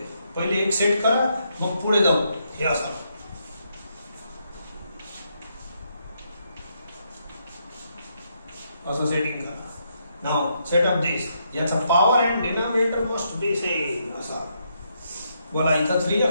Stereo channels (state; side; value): inverted; both; correlation -0.78